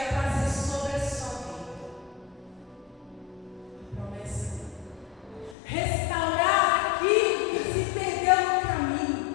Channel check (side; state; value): right; drops out; at 5.6 s